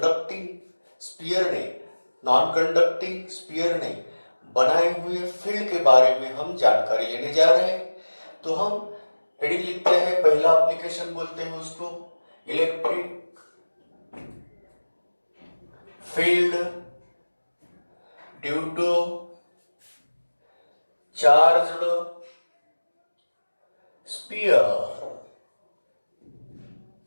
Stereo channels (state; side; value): inverted; both; correlation -1.00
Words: स्फीयर ने, नॉन कंडक्टिंग स्फीयर ने बनाए हुए फील्ड के बारे में हम जानकारी लेने जा रहे हैं। तो हम हेडिंग लिखते हैं, पहला एप्लीकेशन बोलते हैं उसको electric field due to charged sphere.